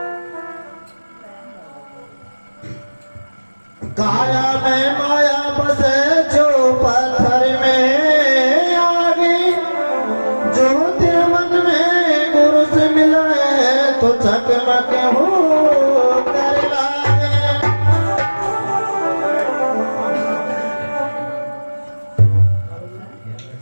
काया में माया बसे जो पत्थर में आगे जो तेरे मन में गुरु से मिला है तो चकमक हो कर लाए।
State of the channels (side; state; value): both; inverted; correlation -1.00